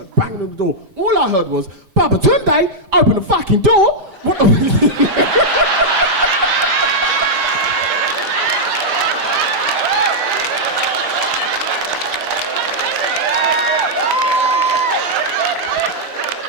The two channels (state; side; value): late; left; 5.1 ms